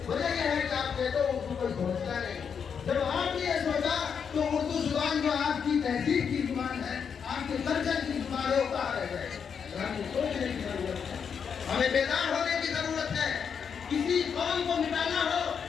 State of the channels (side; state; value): right; quieter; 6.9 dB